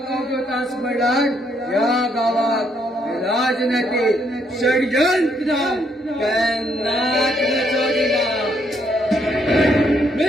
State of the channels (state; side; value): normal; both; correlation 0.72